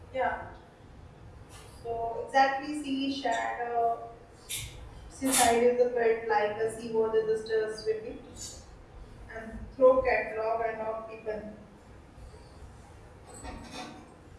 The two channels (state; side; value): identical; both; correlation 1.00